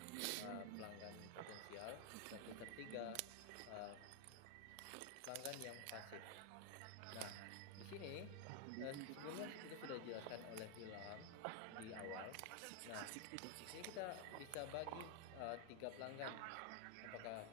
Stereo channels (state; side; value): different; both; correlation 0.00